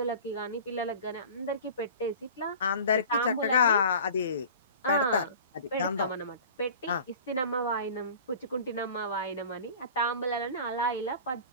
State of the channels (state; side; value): inverted; both; correlation -0.40